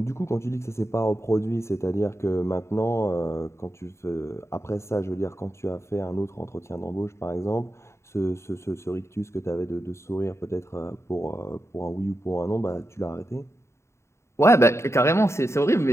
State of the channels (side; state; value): right; late; 0.13 ms